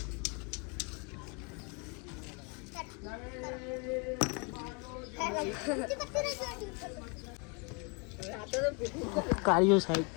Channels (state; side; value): quieter; right; 33.4 dB